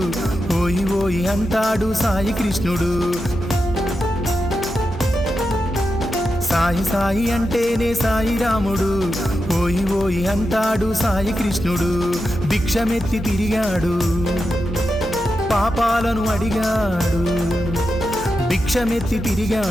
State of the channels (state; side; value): normal; both; correlation 0.88